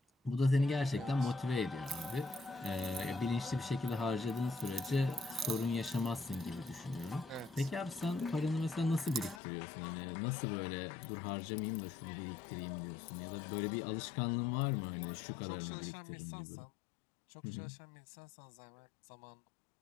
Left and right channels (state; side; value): drops out; right; at 9.4 s